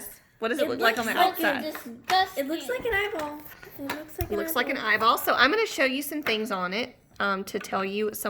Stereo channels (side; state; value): both; identical; correlation 1.00